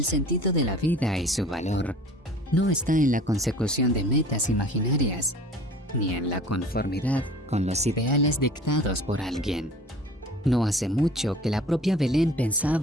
sentido de la vida y su valor no está en la consecución de metas imaginarias, ni en la conformidad con los ideales dictados por alguien. No hace mucho que la propia Belén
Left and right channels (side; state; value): both; normal; correlation 0.46